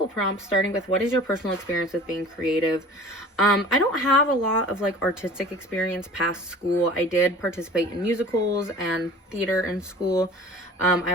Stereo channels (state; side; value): normal; both; correlation 0.43